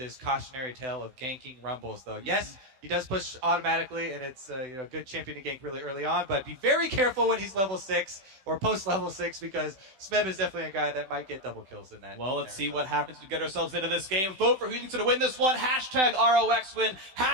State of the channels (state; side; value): late; left; 16 ms